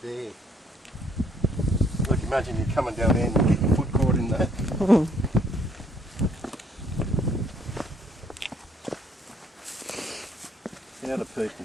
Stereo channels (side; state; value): both; normal; correlation 0.65